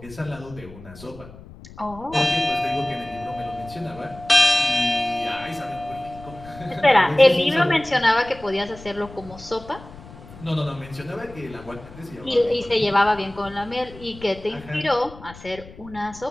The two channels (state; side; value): noise; left; rumble, 18 dB below the sound